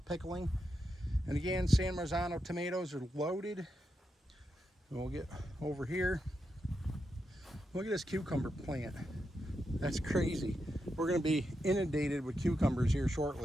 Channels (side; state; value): both; normal; correlation 0.86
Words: And again, San Marzano tomatoes are loaded. And we'll get over here. Look at this cucumber plant. That's crazy. We're going to be inundated with cucumbers here